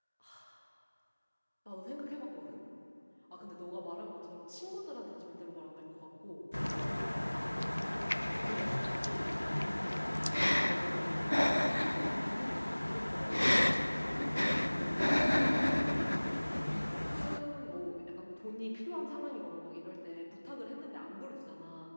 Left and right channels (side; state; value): both; inverted; correlation -1.00